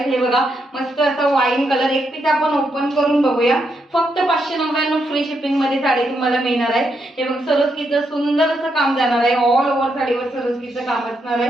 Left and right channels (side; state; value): both; normal; correlation 0.80